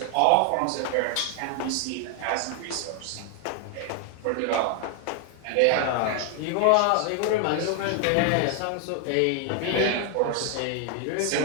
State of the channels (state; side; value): different; both; correlation 0.00